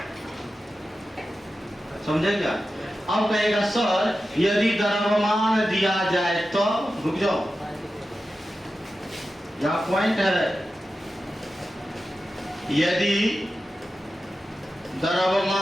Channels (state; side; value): normal; both; correlation 0.92